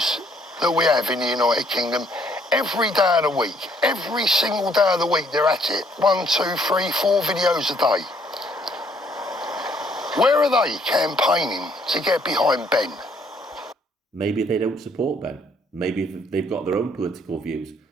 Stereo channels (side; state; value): both; normal; correlation 0.65